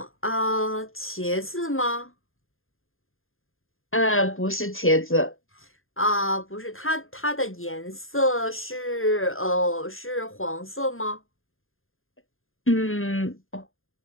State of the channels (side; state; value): right; late; 0.60 ms